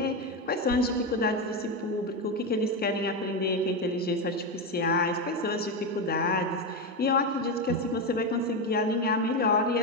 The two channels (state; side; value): normal; both; correlation 0.12